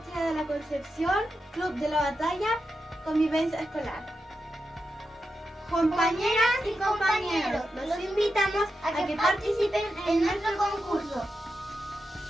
de la Concepción, Club de la Batalla, Convivencia Escolar. Compañeras y compañeros, los invitamos a que participen en nuestro concurso.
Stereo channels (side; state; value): both; normal; correlation 0.88